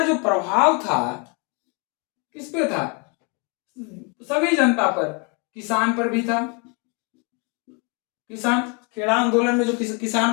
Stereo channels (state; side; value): quieter; right; 33.7 dB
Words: प्रभाव था किस पे था? सभी जनता पर, किसान पर भी था। किसान, खेड़ा आंदोलन में जो